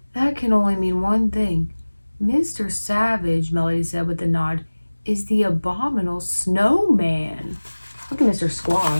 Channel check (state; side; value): inverted; both; correlation -1.00